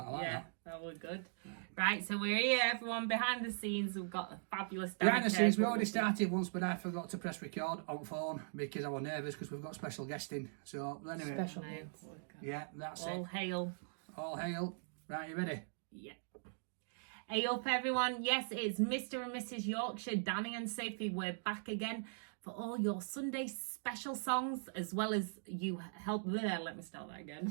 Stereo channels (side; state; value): left; silent; digital silence